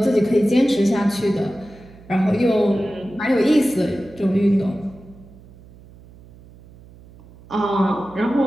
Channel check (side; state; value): right; noise; hum, 23 dB below the sound